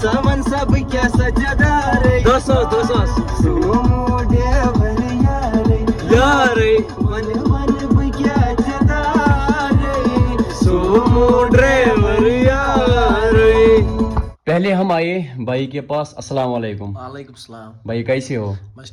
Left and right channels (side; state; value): both; identical; correlation 1.00